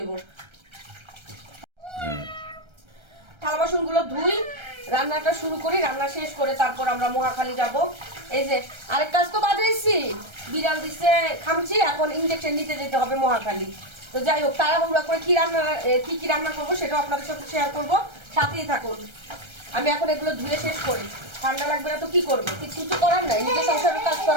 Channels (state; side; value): late; left; 1.3 ms